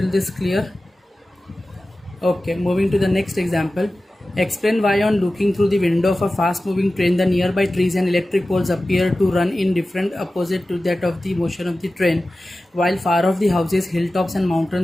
this clear? Okay, moving to the next example. Explain why on looking through the window of a fast moving train the nearby trees and electric poles appear to run in different opposite to that of the motion of the train, while far off the houses, hilltops and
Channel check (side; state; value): both; normal; correlation 0.95